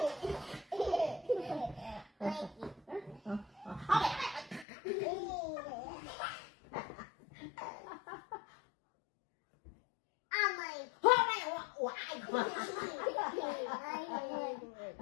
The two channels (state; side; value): drops out; right; at 4.7 s